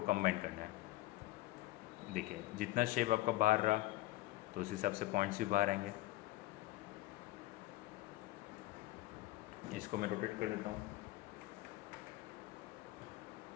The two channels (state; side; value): quieter; right; 18.3 dB